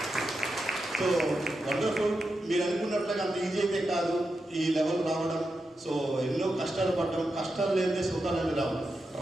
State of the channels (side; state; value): both; normal; correlation 0.88